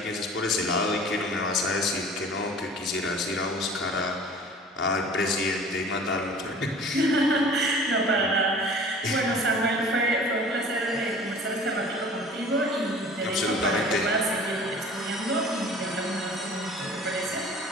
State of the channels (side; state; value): both; normal; correlation 0.45